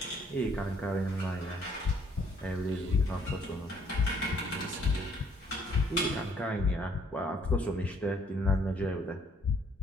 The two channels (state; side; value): normal; both; correlation 0.65